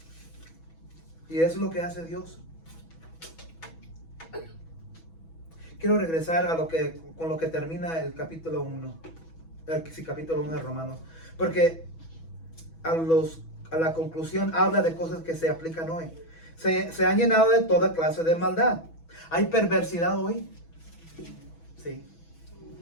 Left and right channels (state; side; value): late; right; 6.1 ms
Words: Y eso es lo que hace Dios. Quiero regresar con lo que termina el capítulo 1. Capítulo 1 de Romanos. Porque a la conclusión habla de cosas que se aplican hoy. Se han llenado de toda clase de maldad. ¿Hay perversidad hoy? Sí.